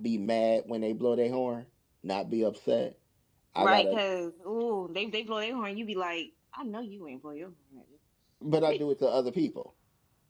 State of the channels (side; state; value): both; identical; correlation 1.00